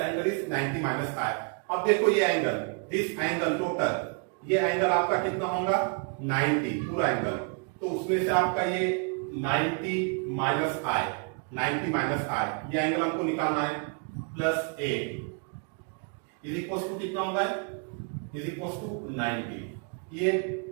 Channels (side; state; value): left; quieter; 37.8 dB